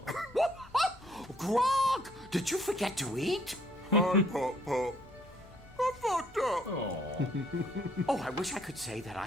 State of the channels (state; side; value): normal; both; correlation 0.65